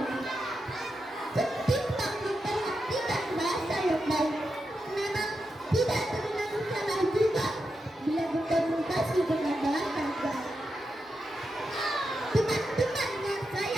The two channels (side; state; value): both; normal; correlation 0.87